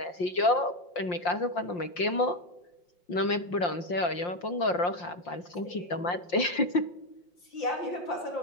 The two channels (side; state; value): right; late; 5.7 ms